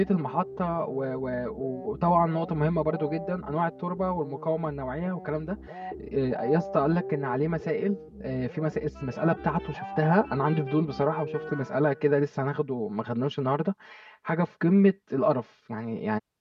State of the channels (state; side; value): identical; both; correlation 1.00